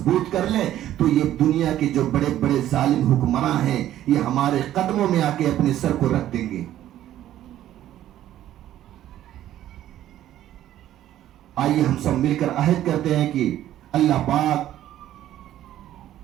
کر لیں تو یہ دنیا کے جو بڑے بڑے ظالم حکمراں ہیں یہ ہمارے قدموں میں آ کے اپنے سر کو رکھ دیں گے۔ آئیے ہم سب مل کر عہد کرتے ہیں کہ اللہ پاک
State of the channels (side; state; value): left; quieter; 12.6 dB